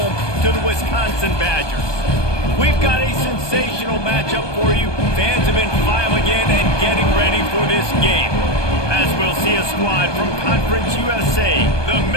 to the Wisconsin Badgers. We've got a sensational matchup for you. Fans have been filing in and getting ready for this game, as we'll see a squad from Conference USA, the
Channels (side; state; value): right; late; 1.2 ms